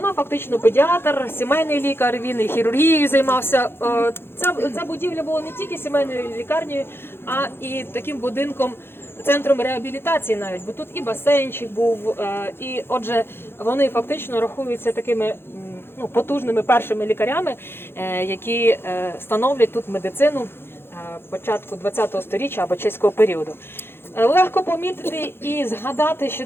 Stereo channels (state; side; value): late; right; 0.11 ms